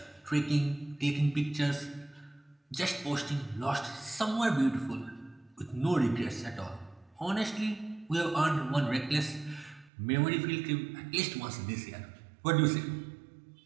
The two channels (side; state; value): left; drops out; at 9.9 s